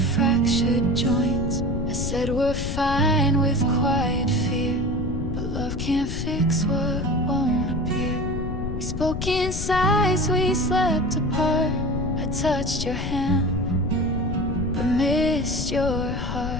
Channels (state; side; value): noise; left; rumble, 4 dB below the sound